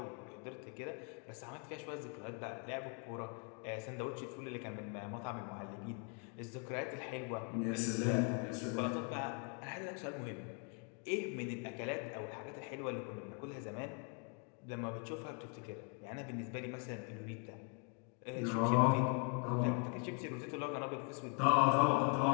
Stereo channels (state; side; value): quieter; right; 37.7 dB